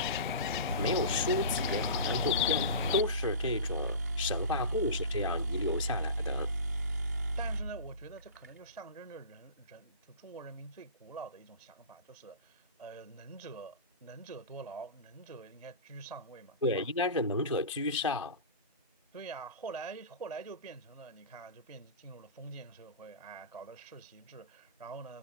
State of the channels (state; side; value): inverted; both; correlation -0.33